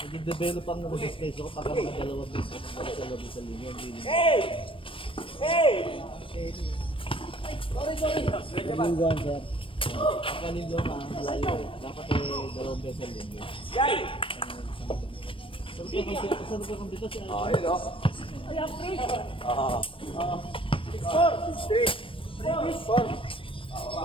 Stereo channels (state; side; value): late; right; 0.25 ms